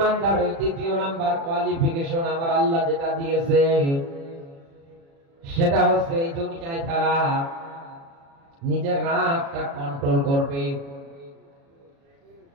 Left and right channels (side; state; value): left; late; 36 ms